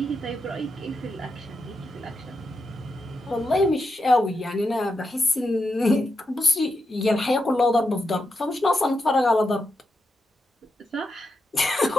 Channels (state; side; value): normal; both; correlation 0.86